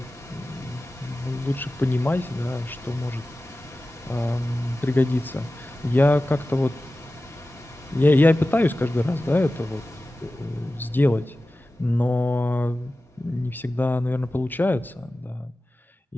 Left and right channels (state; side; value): normal; both; correlation 0.95